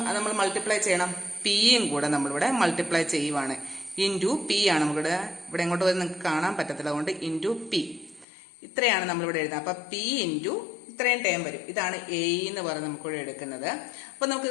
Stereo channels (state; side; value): drops out; right; at 8.2 s